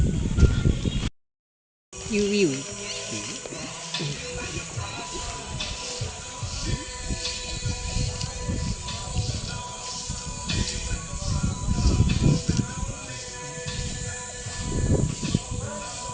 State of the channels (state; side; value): identical; both; correlation 1.00